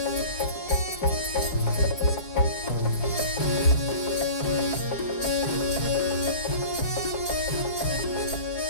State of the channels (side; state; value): right; late; 5.4 ms